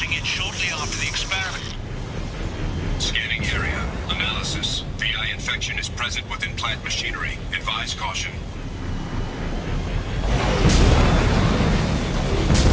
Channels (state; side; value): identical; both; correlation 1.00